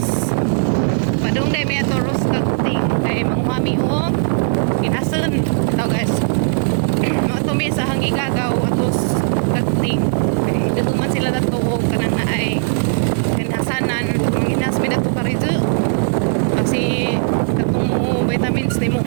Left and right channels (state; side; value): silent; left; 67 dB below the other